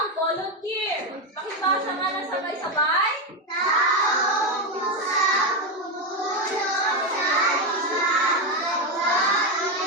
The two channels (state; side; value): normal; both; correlation 0.10